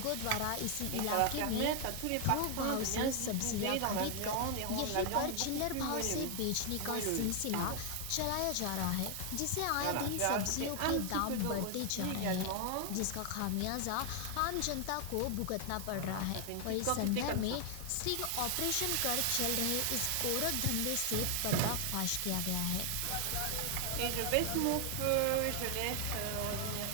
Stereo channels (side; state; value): both; different; correlation 0.00